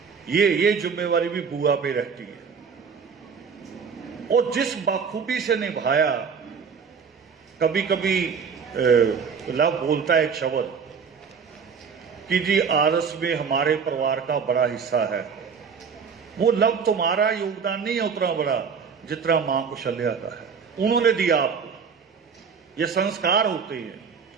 ये जिम्मेवारी भी बुआ पे रहती है। और जिस बाखूबी से निभाया, कभी कभी लव बोलता है एक शब्द कि जी आरस में हमारे परिवार का बड़ा हिस्सा है। वो लव तुम्हारा योगदान नहीं है उतना बड़ा जितना मां कुशल्या का है। उन्होंने दिया आपको, ये संस्कार होते हैं।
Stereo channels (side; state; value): left; quieter; 6.1 dB